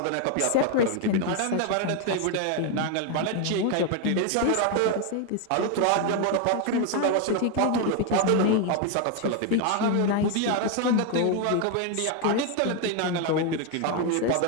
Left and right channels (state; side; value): different; both; correlation 0.01